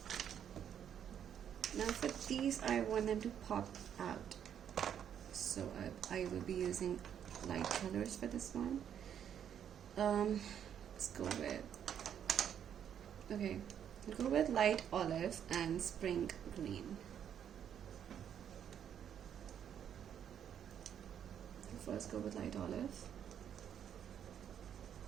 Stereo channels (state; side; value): quieter; left; 9.1 dB